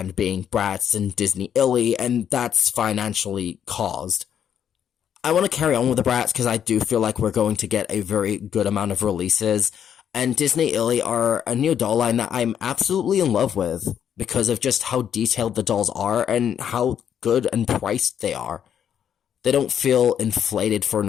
being Bratz and Disney Illy, and that's financially caused. I want to carry on with the Bratz because I do feel like we're going to get a very good amount of releases, and Disney Illy are a new doll line that I'm absolutely in love with, because of just how detailed the dolls are and how good and priced they are. They don't feel inflated for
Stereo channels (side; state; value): right; quieter; 8.9 dB